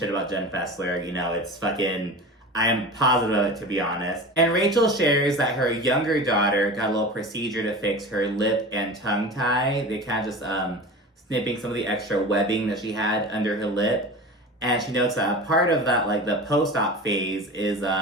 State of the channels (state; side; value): normal; both; correlation 0.32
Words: about Jen Fessler. You know, it's fucking, I am positive of it, to be honest. And Rachel shares that her younger daughter got a little procedure to fix her lip and tongue tie. They kind of just snipping some of the extra webbing that she had under her lip. And she notes that a part of that, like the post-op phase, is